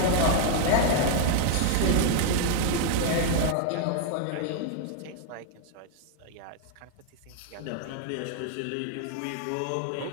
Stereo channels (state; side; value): different; both; correlation 0.00